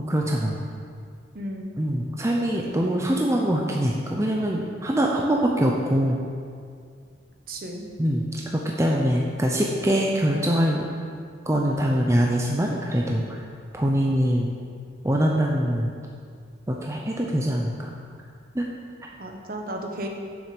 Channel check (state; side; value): normal; both; correlation 0.82